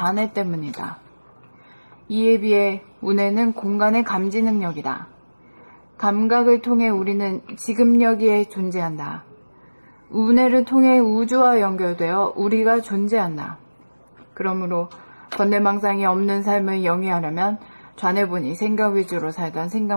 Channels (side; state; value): both; inverted; correlation -1.00